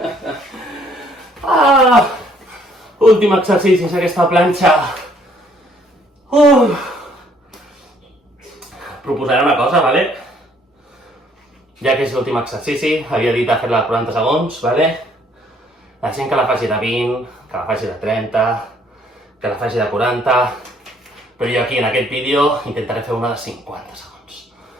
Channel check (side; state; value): both; normal; correlation 0.64